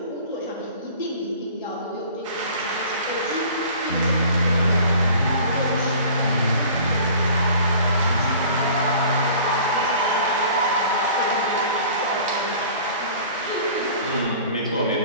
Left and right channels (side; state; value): both; inverted; correlation -0.46